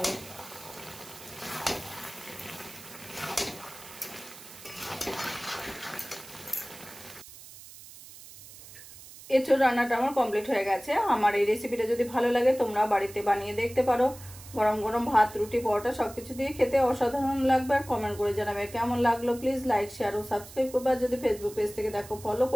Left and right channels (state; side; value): noise; right; hiss, 17 dB below the sound